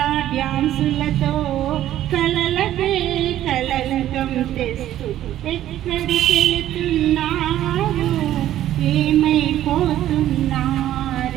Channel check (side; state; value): left; quieter; 12.7 dB